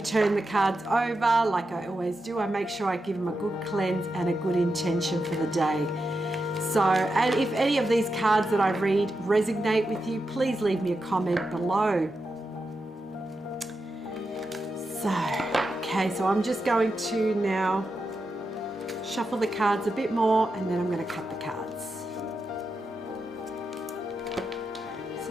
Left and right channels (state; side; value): normal; both; correlation 0.88